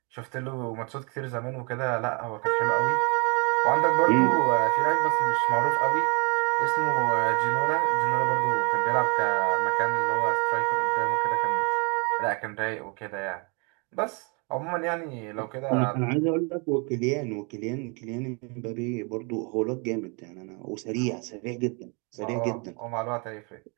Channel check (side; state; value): left; quieter; 33.3 dB